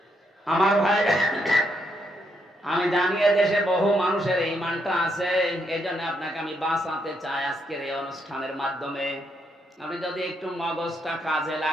আমার ভাই, আমি জানি দেশে বহু মানুষের ঈমানটা আছে, এই জন্য আপনাকে আমি বাঁচাতে চাই আজকের এই অনুষ্ঠানের মাধ্যমে। আপনি যদি একটু মগজটা কাজে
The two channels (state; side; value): normal; both; correlation 0.77